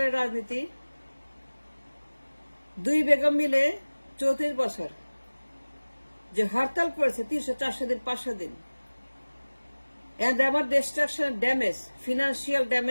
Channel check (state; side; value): inverted; both; correlation -1.00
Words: রাজনীতি। দুই বেগম মিলে 34 বছর যে হরতাল করেছে, 300, 400 দিন, 500 দিন। And আমার destruction, damage, financial